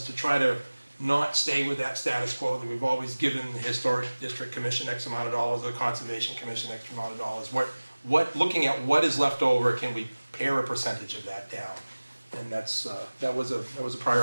to try to not stay with that status quo that we've always given the Historic District Commission X amount of dollars, or the Conservation Commission X amount of dollars. Looking at what is left over, can we pare a percentage of that down? And that was a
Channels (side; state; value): both; inverted; correlation -1.00